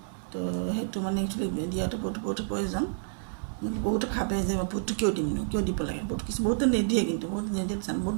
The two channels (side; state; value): left; silent; 58 dB below the other